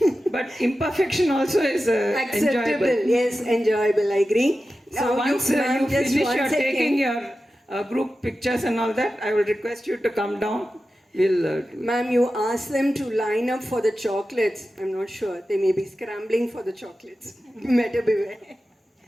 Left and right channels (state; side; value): normal; both; correlation 0.93